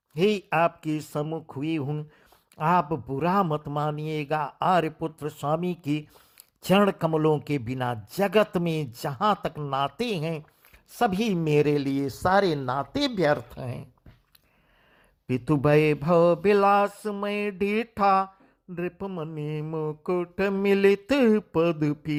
ही आपके सम्मुख हुई हूं, आप बुरा मत मानिएगा। आर्यपुत्र स्वामी की चरण कमलों के बिना जगत में जहां तक नाते हैं, सभी मेरे लिए सारे नाते व्यर्थ हैं। पितु भय भव विलास में डीठा, नृपमणि मुकुट मिलित पद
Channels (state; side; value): identical; both; correlation 1.00